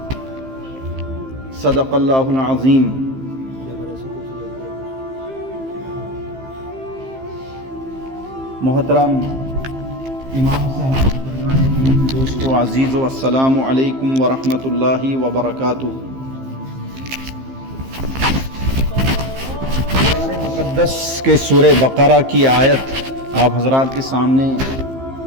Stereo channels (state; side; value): late; left; 15 ms